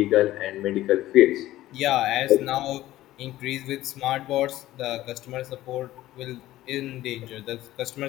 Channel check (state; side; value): quieter; right; 15.3 dB